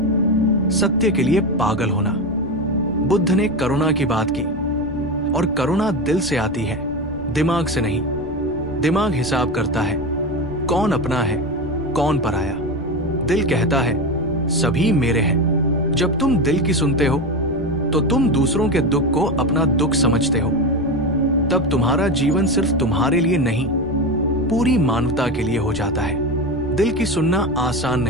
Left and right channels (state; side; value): noise; right; rumble, 17 dB below the sound